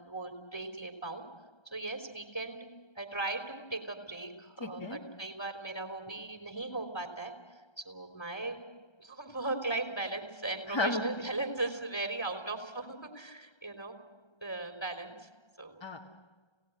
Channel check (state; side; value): late; right; 1.3 ms